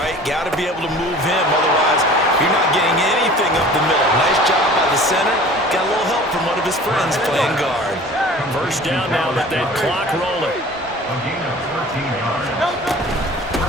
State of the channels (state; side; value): normal; both; correlation 0.44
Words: Got to be able to move him, otherwise you're not getting anything up the middle. Nice job by the center. Got a little help from one of his friends playing guard. First down now with that clock rolling.